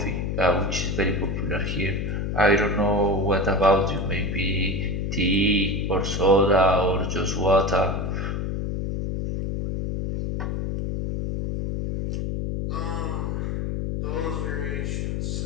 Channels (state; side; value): noise; left; hum, 2 dB below the sound